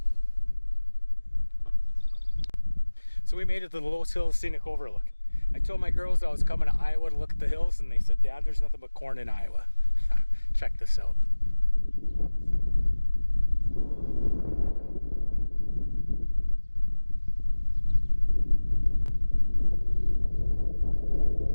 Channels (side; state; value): both; inverted; correlation -1.00